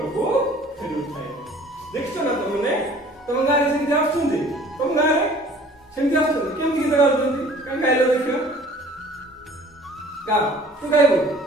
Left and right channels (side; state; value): both; normal; correlation 0.51